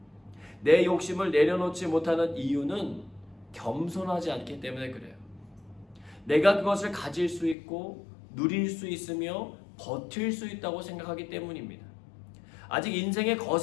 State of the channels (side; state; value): right; drops out; at 7.6 s